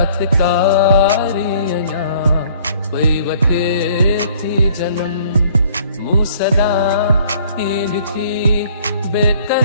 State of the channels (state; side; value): inverted; both; correlation -0.57